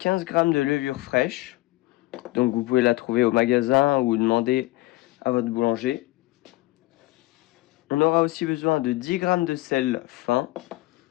g de levure fraîche. Donc vous pouvez la trouver au magasin ou demander à votre boulanger. On aura aussi besoin de 10 g de sel fin,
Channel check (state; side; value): quieter; right; 19.8 dB